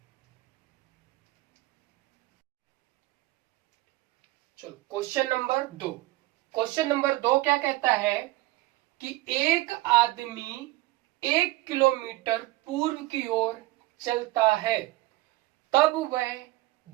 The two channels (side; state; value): left; quieter; 19.2 dB